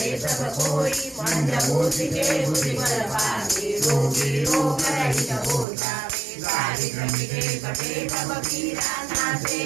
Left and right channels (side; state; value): left; drops out; at 5.7 s